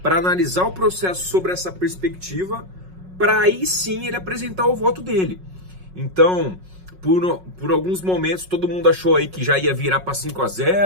para analisar o processo sobre essa perspectiva, para aí sim ele apresentar o voto dele. Então, por alguns momentos, todo mundo achou aí que já ia virar para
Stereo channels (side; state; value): left; late; 5.4 ms